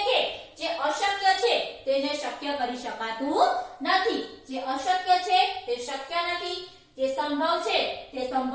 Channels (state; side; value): identical; both; correlation 1.00